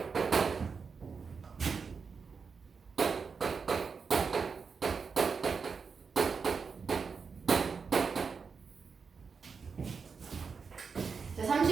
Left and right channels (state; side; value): quieter; left; 5.4 dB